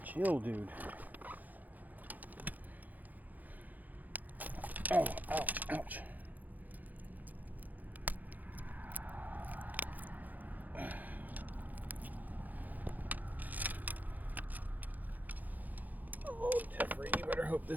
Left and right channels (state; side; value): late; left; 0.082 ms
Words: Chill, dude. Oh, ouch, ouch. Oh, Jeffrey, you better hope